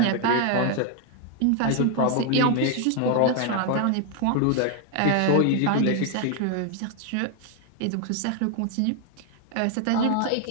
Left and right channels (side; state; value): both; different; correlation 0.00